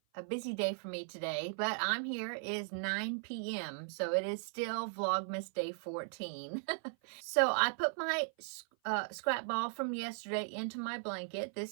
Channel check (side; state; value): left; silent; 53 dB below the other